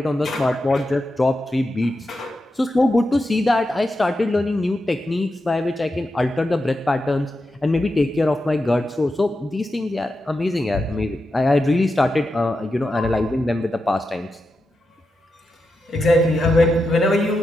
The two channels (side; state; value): both; normal; correlation 0.88